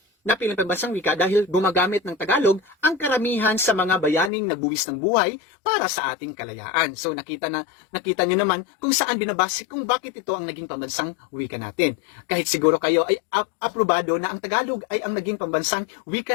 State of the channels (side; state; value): right; drops out; at 4.3 s